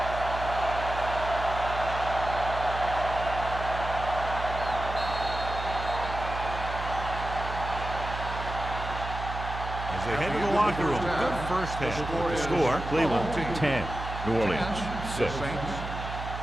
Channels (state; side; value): noise; right; hum, 7 dB below the sound